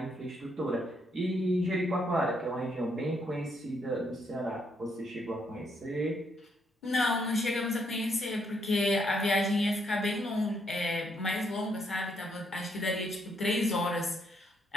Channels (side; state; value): both; normal; correlation 0.74